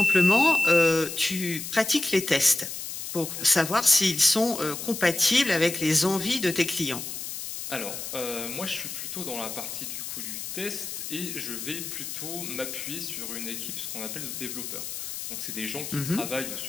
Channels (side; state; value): left; noise; hiss, 7 dB below the sound